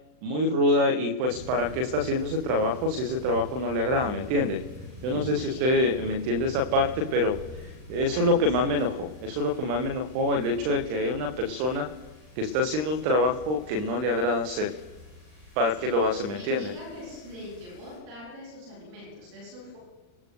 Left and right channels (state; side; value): late; left; 39 ms